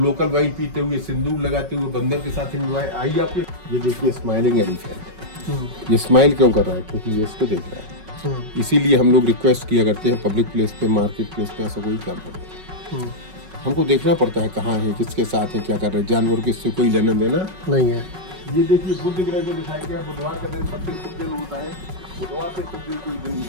वाइन पीते हुए, सिंदूर लगाते हुए, बंदर के साथ एंजॉय। आइए आपके, ये देखिए स्माइलिंग एलिफेंट। ये स्माइल क्यों कर रहा है? क्योंकि ये इसको देख रहा है। इसीलिए हम लोग रिक्वेस्ट किया करते हैं, पब्लिक प्लेस पे, मार्केट प्लेस पे ऐसा कोई काम करते हैं, हमको देखना पड़ता है कहाँ है, किसके साथ है, क्या कर रहे हैं। जानवर को इससे कोई लेना देना नहीं है। ये देखिए, बुद्ध ग्रह को दिखाया गया। बुधवार का दिन सबसे शुभ दिन होता है, बुधवार से शुभ दिन कोई दिन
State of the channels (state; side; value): late; left; 5.3 ms